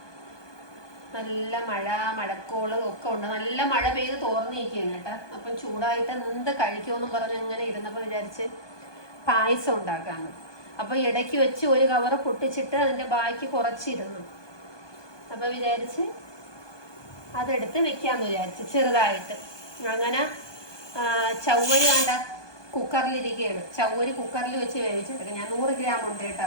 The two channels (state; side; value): late; right; 1.2 ms